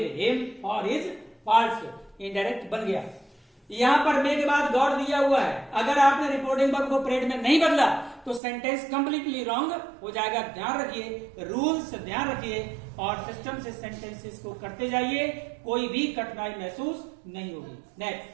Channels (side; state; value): left; drops out; at 8.4 s